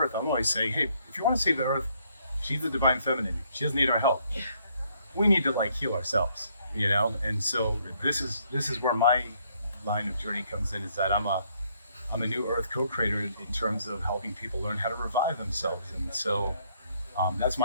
I'm always saying, hey, if you want to save the earth, she's the divine feminine. She doesn't need our help. We need to heal ourselves, you know. And so this is where my line of journey comes in, is that I'm a new earth co-creator in terms of helping people learn how to revive themselves. And so that's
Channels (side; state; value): both; inverted; correlation -0.69